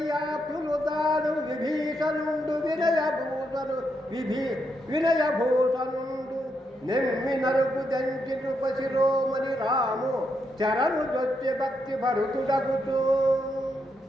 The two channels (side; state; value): both; normal; correlation 0.80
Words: విభీషణుండు వినయభూషణుండు నెమ్మి నరుకు దంచి నృపశిరోమణి రాము చరణు దొచ్చి భక్తి భరుతుడగుతూ